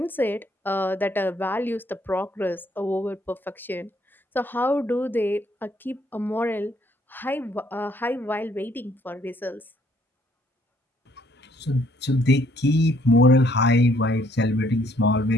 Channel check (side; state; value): both; normal; correlation 0.66